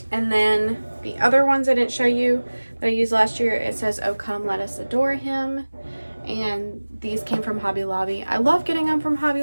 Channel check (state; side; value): inverted; both; correlation -1.00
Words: And then the other ones I didn't show you that I used last year, it says, "Oh, come, let us adore him." And these came from Hobby Lobby. I love getting them from Hobby